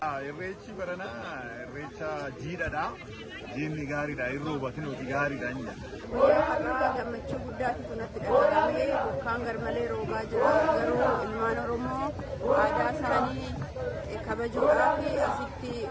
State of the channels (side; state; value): both; identical; correlation 1.00